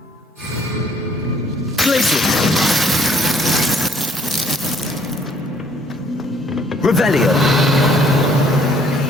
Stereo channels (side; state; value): both; normal; correlation 0.62